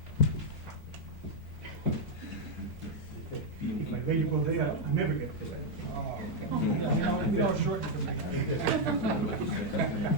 Like lady go there, I never get to that.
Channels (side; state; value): both; normal; correlation 0.00